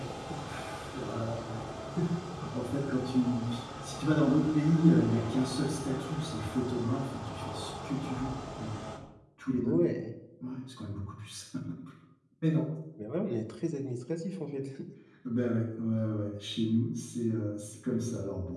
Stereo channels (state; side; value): identical; both; correlation 1.00